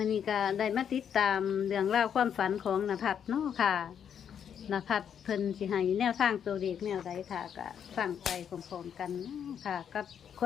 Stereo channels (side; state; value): right; quieter; 8.3 dB